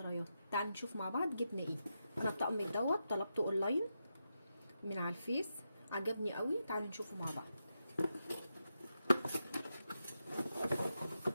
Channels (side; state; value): both; inverted; correlation -0.86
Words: تعالوا نشوف مع بعض جبنا ايه. انا الطقم دوت طلبته اونلاين من على الفيس، عجبني قوي. تعالوا نشوفه مع بعض.